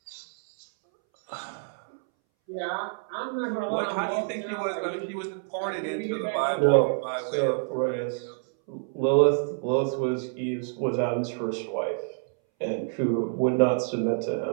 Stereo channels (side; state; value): left; silent; 60 dB below the other